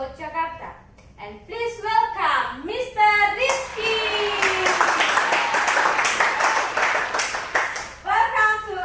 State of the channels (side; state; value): both; identical; correlation 1.00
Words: Jakarta. And please welcome Mr. Rizky. Welcome to